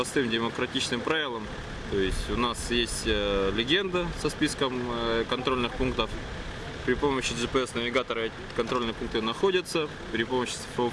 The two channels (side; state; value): both; identical; correlation 1.00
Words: демократичным правилам. То есть у нас есть легенда со списком контрольных пунктов. При помощи GPS-навигатора эти контрольные пункты находятся. При помощи